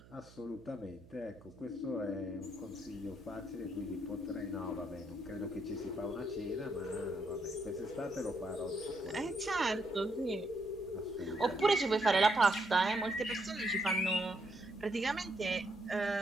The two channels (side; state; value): right; noise; hum, 22 dB below the sound